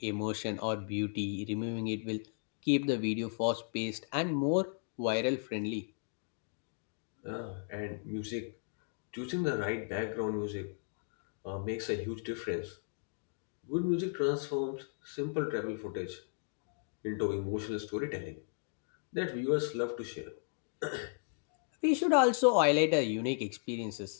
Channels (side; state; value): right; silent; digital silence